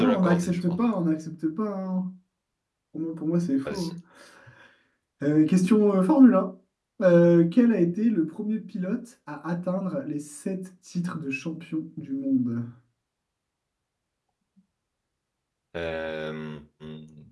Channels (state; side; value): identical; both; correlation 1.00